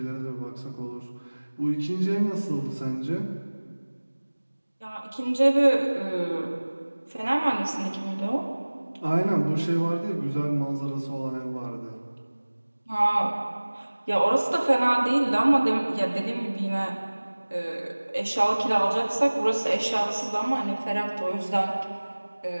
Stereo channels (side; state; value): both; inverted; correlation -1.00